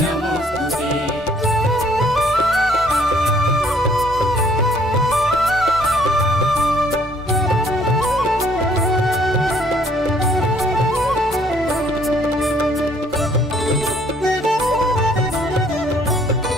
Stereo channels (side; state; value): both; normal; correlation 0.62